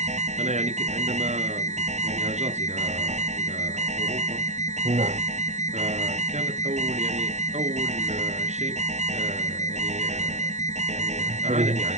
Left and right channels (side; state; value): left; late; 0.33 ms